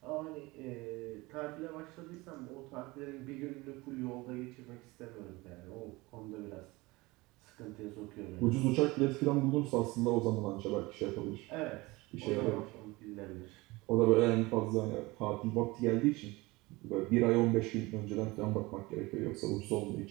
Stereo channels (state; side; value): quieter; left; 22.3 dB